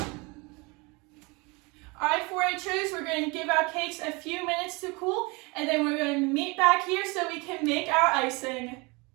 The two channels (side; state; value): left; quieter; 27.3 dB